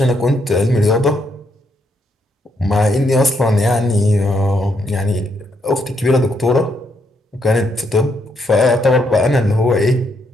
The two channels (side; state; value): both; normal; correlation 0.76